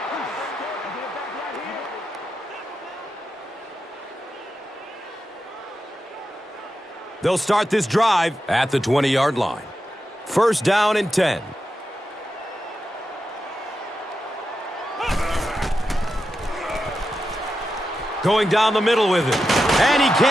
They'll start this drive at the 20-yard line. First down and 10. Going down the middle with it. And he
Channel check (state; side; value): normal; both; correlation 0.89